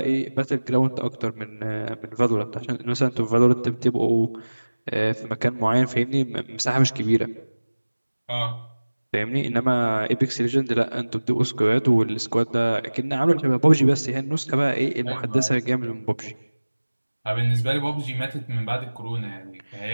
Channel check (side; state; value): both; inverted; correlation -1.00